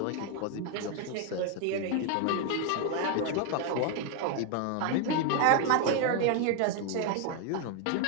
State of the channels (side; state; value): both; different; correlation 0.01